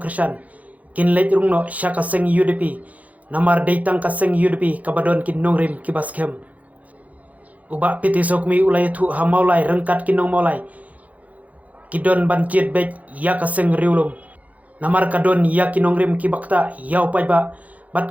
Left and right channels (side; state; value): left; late; 0.073 ms